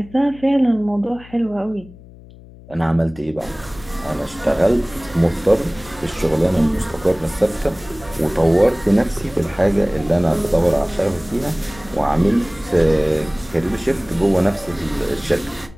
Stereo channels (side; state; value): left; noise; hum, 21 dB below the sound